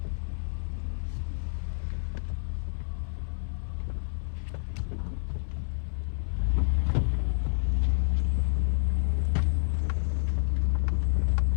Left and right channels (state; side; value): silent; right; 59 dB below the other